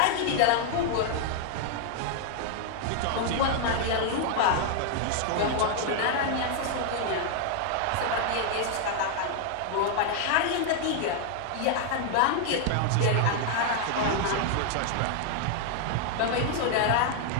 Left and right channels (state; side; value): different; both; correlation 0.00